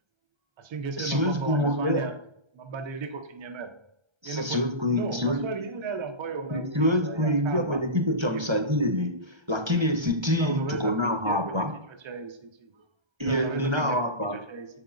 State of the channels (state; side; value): late; left; 1.3 ms